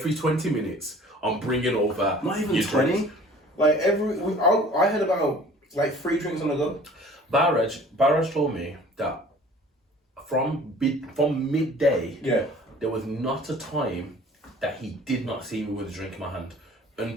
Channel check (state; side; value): normal; both; correlation 0.49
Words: 20 minutes, I'm bringing over not even 20. Drinks. Like I had about like 3 drinks on the go. Barrage told me that from midday, there was not a time that he did not see me with a drink in my hand